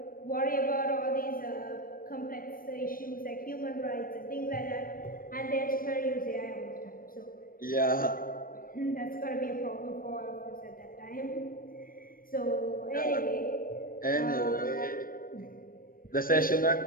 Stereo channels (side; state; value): right; late; 0.41 ms